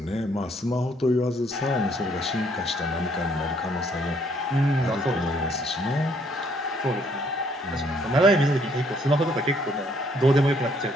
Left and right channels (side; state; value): both; normal; correlation 0.66